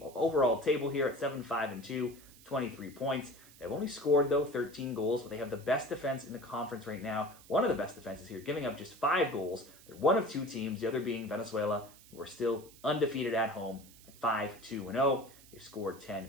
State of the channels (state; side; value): noise; right; hiss, 22 dB below the sound